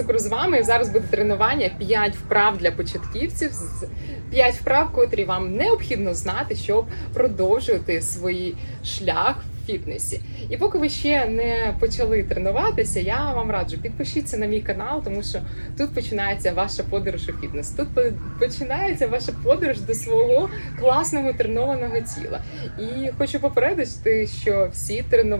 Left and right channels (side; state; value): both; inverted; correlation -1.00